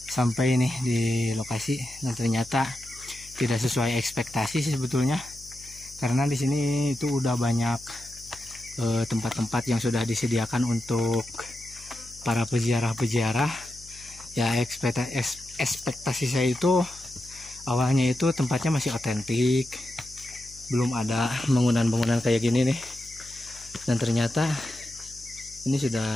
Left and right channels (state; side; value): noise; left; hum, 21 dB below the sound